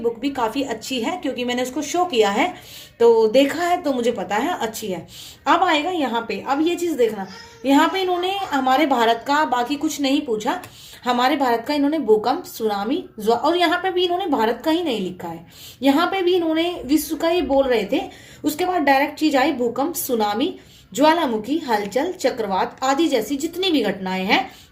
भी काफी अच्छी है क्योंकि मैंने उसको शो किया है, तो देखा है, तो मुझे पता है अच्छी है। अब आएगा यहाँ पे, अब ये चीज देखना, यहाँ पे इन्होंने हमारे भारत का बाकी कुछ नहीं पूछा, हमारे भारत का इन्होंने भूकंप, सुनामी, और यहाँ पे भी इन्होंने भारत का ही नहीं लिखा है, यहाँ पे भी इन्होंने विश्व का ही बोल रहे थे। उसके बाद डायरेक्ट चीज आई भूकंप, सुनामी, ज्वालामुखी, हलचल, चक्रवात आदि जैसी जितनी भी घटनाएं हैं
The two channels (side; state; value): both; identical; correlation 1.00